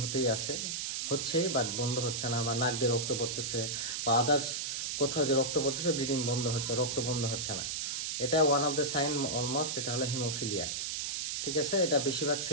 হচ্ছে বাট বন্ধ হচ্ছে না, বা নাক দিয়ে রক্ত পড়তেছে, বা আদার্স কোথাও যে রক্ত পড়তেছে, ব্লিডিং বন্ধ হচ্ছে, রক্ত বন্ধ হচ্ছে না। এটা one of the sign almost, এটা হলো হিমোফিলিয়া। ঠিক আছে, এটা বেশিরভাগ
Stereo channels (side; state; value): right; noise; hiss, 2 dB below the sound